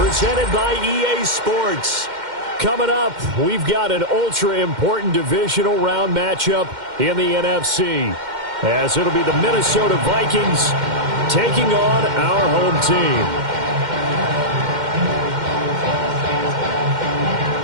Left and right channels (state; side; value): late; left; 2.1 ms